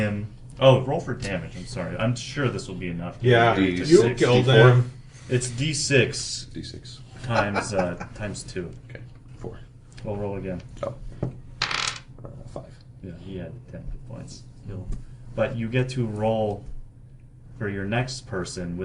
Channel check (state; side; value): identical; both; correlation 1.00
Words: Oh, roll for damage. I'm sorry. I'm sure this will be enough. Yeah, D- you six, killed D4. him. It's D6 D6. times 2. Okay. 4. We'll roll again. Oh. 5. Yeah, he had 10 hit points. But you get to roll for your next person